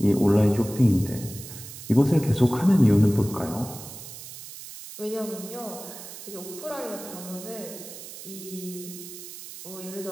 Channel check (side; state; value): right; noise; hiss, 13 dB below the sound